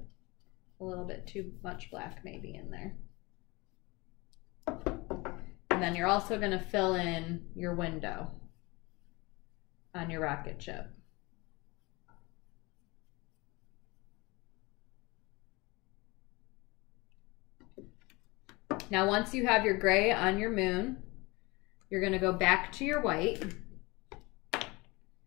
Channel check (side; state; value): right; quieter; 24.5 dB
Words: a little bit too much black maybe in there. And then you're also going to fill in your window on your rocket ship. Now once you have your gray on your moon, you're going to go back to your white.